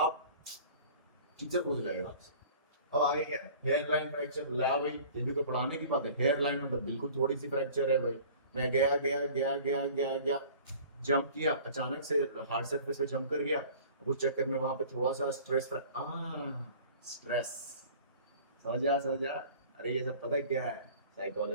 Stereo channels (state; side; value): inverted; both; correlation -0.46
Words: टीचर पूछ जाएगा आपसे, अब आगे क्या, हेयर लाइन फ्रैक्चर। ला भाई, ये भी कोई पढ़ाने की बात है? हेयर लाइन मतलब बिल्कुल थोड़ी सी फ्रैक्चर है भाई। मैं गया गया गया गया गया गया, जंप किया, अचानक से हार्ड सरफेस पे जंप कर गया, उस चक्कर में वहां पे थोड़ा सा स्ट्रेस। समझ जा। अरे ये सब पता है क्या है?